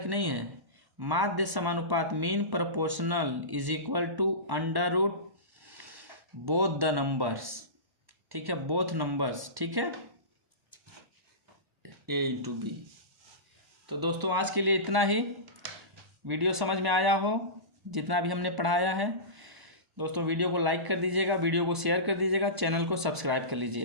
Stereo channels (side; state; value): left; late; 1.0 ms